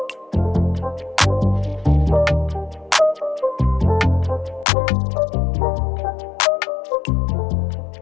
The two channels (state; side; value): drops out; right; at 4.7 s